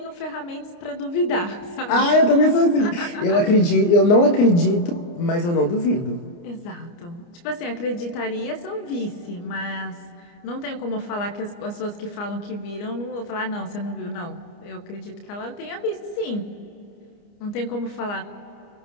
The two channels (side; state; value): right; late; 29 ms